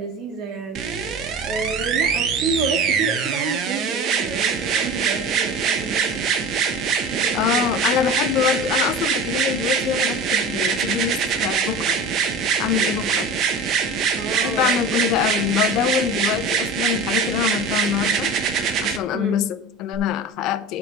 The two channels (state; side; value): normal; both; correlation 0.34